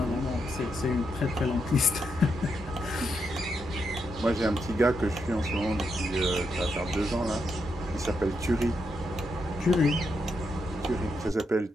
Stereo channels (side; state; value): both; normal; correlation 0.81